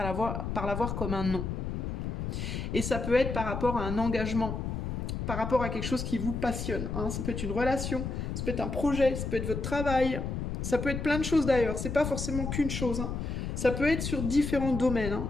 par la voir comme un non? Et ça peut être par rapport à un engagement, par rapport à quelque chose qui vous passionne. Hein. Ça peut être une relation, ça peut être un projet, ça peut être votre travail, ça peut être plein de choses d'ailleurs. C'est pas forcément qu'une chose. Hein. Ça peut être sur différents domaines. Hein.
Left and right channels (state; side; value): noise; left; rumble, 3 dB below the sound